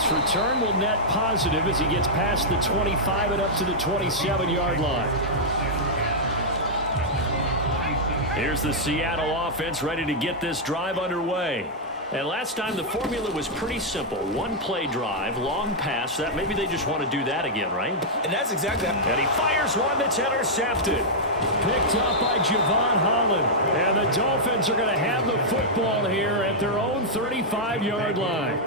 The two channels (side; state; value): both; normal; correlation -0.07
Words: return will net positive as he gets past the 25 and up to the 27-yard line. Here's the Seattle offense ready to get this drive underway. And last time the formula was pretty simple. 1-play drive, long pass. That maybe they just want to do that again, right? And that's exactly that. And he fires one that's intercepted. Picked up by Javon Holland. And the Dolphins are going to have the football here at their own 35-yard line.